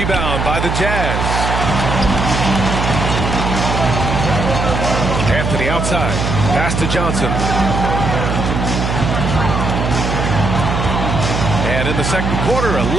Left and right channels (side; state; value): right; noise; hum, 1 dB below the sound